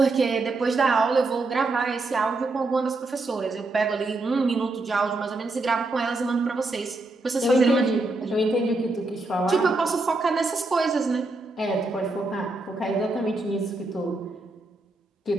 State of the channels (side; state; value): left; quieter; 3.1 dB